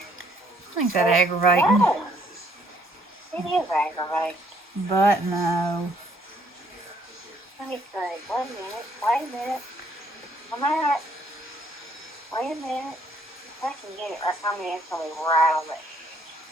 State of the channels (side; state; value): both; normal; correlation 0.65